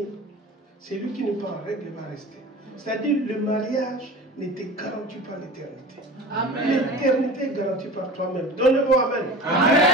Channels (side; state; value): both; normal; correlation 0.36